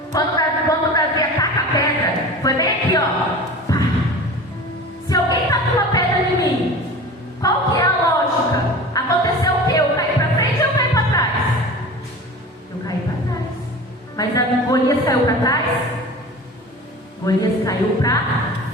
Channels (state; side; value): normal; both; correlation 0.36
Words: Quando Davi ataca a pedra, foi bem aqui, ó. Pá. Se alguém taca uma pedra em mim, qual que é a lógica? Aconteceu o quê? Eu caí pra frente ou eu caí pra trás? Eu caí pra trás. Mas a Golias caiu pra trás? Golias caiu pra